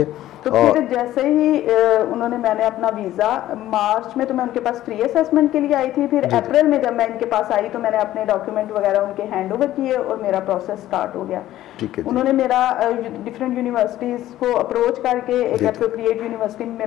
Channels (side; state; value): right; quieter; 14.0 dB